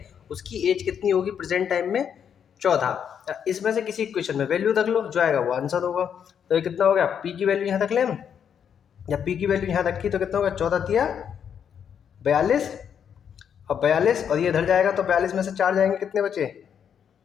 उसकी एज कितनी होगी प्रेजेंट टाइम में 14। इसमें से किसी इक्वेशन में वैल्यू रख लो, जो आएगा वो आंसर होगा। तो ये कितना हो गया, पी की वैल्यू यहाँ तक लें, जब पी की वैल्यू यहाँ रखी तो कितना होगा, 14 तिया 42, और 42 और ये इधर जाएगा तो 42 में से 4 जाएंगे, कितने बचे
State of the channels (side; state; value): right; quieter; 8.1 dB